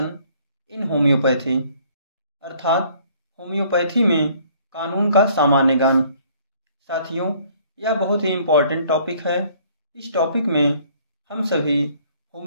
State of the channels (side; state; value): both; inverted; correlation -0.59